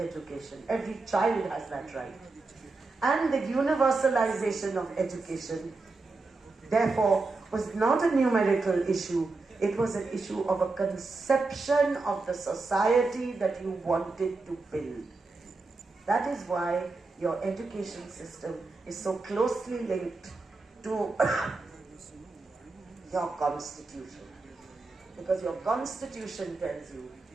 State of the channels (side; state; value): left; quieter; 3.7 dB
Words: Every child has that right. And the universalization of education, therefore, was not a numerical issue. It was an issue of a conception of the society that you wanted to build. That is why your education system is so closely linked to your constitution. Because your constitution tells you